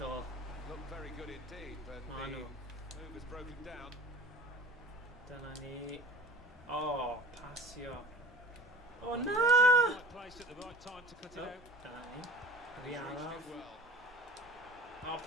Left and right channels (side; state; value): both; normal; correlation 0.42